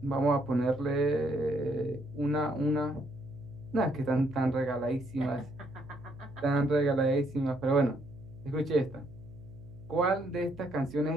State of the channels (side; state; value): right; noise; hum, 20 dB below the sound